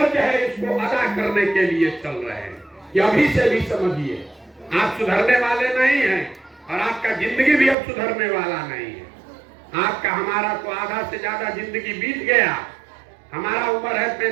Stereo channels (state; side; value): drops out; left; at 7.8 s